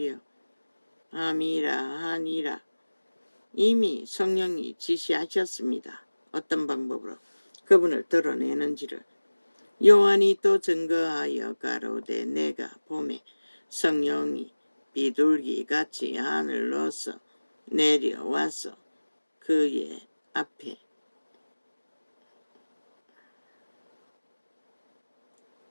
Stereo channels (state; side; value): inverted; both; correlation -1.00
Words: 함이라 하니라. 이미 성령이 지시하셨습니다. 어떤 방법으로 그분을 드러내는지를. 요한이 또 증거하여 가로되 내가 봄에 성령이 비둘기같이 하늘로서 내려와서 그의 앞에